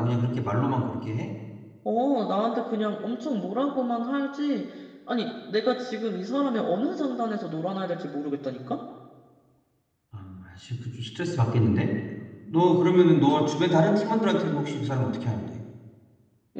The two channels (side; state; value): both; identical; correlation 1.00